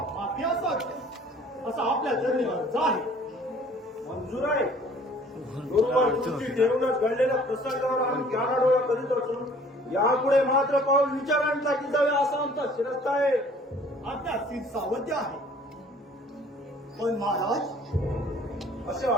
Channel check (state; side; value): normal; both; correlation 0.53